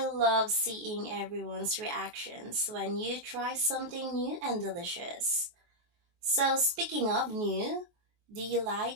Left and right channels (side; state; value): left; late; 23 ms